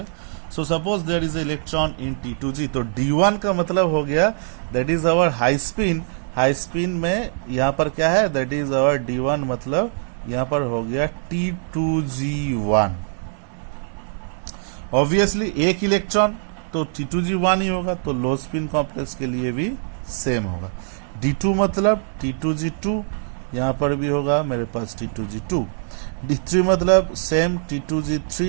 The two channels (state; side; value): silent; left; digital silence